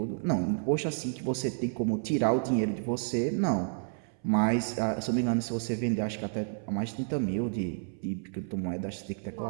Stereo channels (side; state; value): left; silent; 57 dB below the other